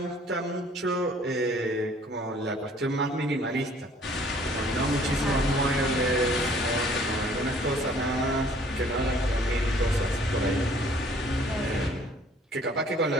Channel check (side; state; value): both; normal; correlation 0.57